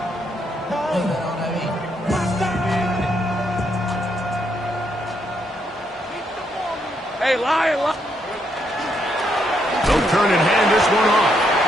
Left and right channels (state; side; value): normal; both; correlation 0.76